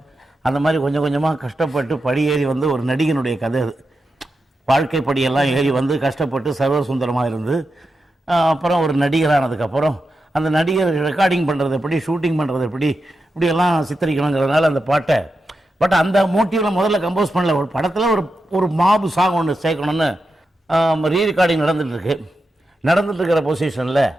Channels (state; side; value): normal; both; correlation 0.89